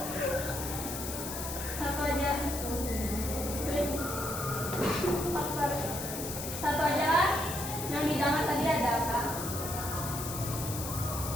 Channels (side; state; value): left; noise; hiss, 6 dB below the sound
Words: Satu aja. Tulis faktor. Satu aja lah. Yang didengar tadi ada apa?